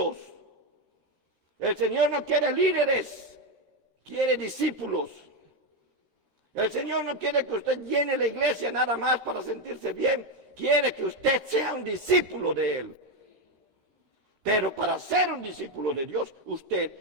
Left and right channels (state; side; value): late; left; 13 ms